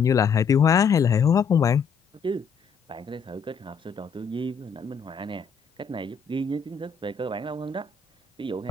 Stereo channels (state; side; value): quieter; right; 5.8 dB